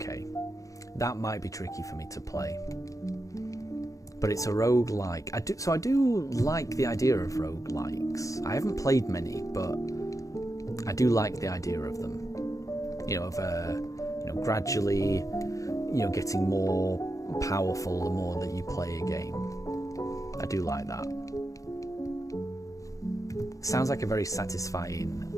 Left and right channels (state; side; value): late; right; 0.16 ms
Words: That might be tricky for me to play. But it's a roguelike. I do like the idea of roguelikes. I haven't played many, but I do like the idea of them. You know, of gradually, getting more powerful the more that you play a game. I do like that. Sounds like a very satisfying